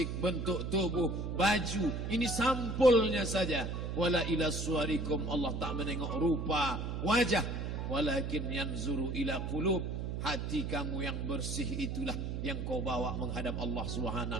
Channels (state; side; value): noise; right; hum, 3 dB below the sound